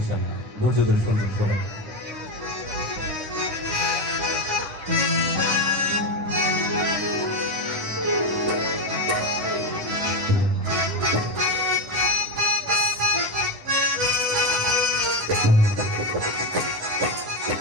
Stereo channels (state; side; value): late; left; 11 ms